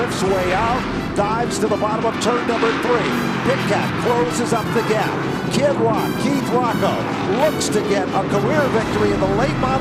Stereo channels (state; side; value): identical; both; correlation 1.00